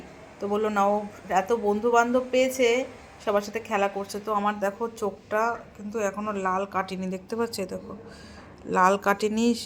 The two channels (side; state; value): both; identical; correlation 1.00